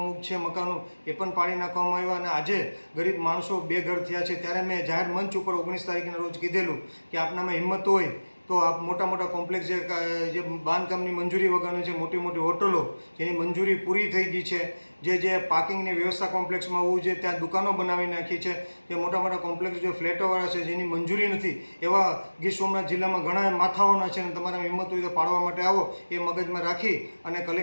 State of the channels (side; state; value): both; inverted; correlation -1.00